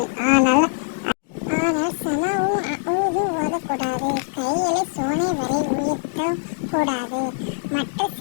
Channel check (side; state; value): right; silent; digital silence